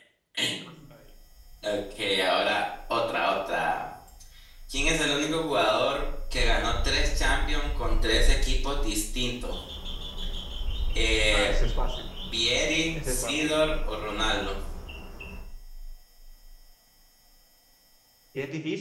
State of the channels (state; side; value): identical; both; correlation 1.00